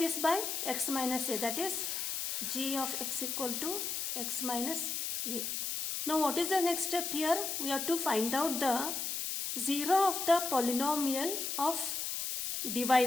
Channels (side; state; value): left; noise; hiss, 2 dB below the sound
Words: by x minus a, that is g of x equal to x minus a. Now what is the next step here? We have to find out the 0 of the polynomial of